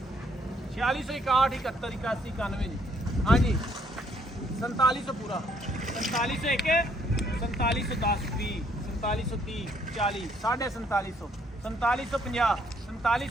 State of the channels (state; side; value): normal; both; correlation 0.68